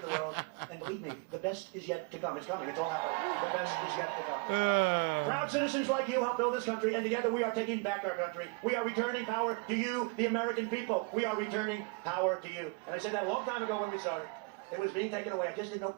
the world. And believe me, the best is yet to come. It's coming. It's all happening. The best is yet to come. Proud citizens like you help build this country, and together we are taking back our country. We are returning power to you, the American people. We are returning power to you. And I said that a long time ago when we started. It was being taken away. I just didn't know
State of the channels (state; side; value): quieter; left; 29.9 dB